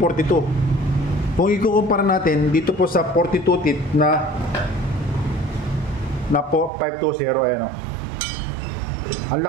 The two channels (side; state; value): left; drops out; at 6.7 s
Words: Kung ikukumpara natin dito po sa 42 teeth na po 520, ayan o. Ang